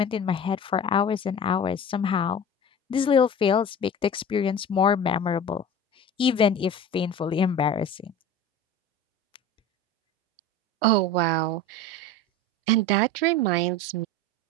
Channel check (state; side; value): normal; both; correlation 0.35